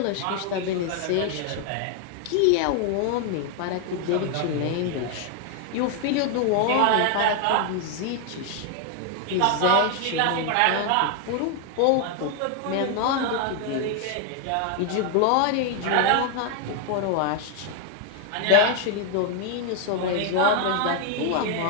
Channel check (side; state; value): both; different; correlation 0.00